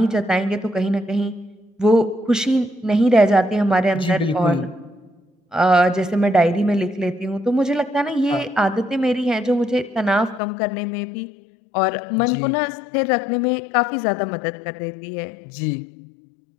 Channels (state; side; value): drops out; right; at 10.4 s